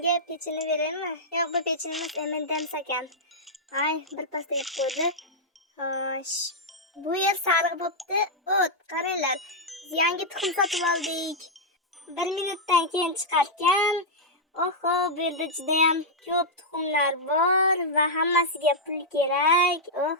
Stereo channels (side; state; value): both; normal; correlation -0.07